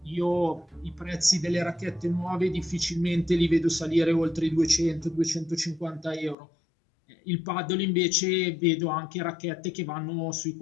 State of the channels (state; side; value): drops out; right; at 6.4 s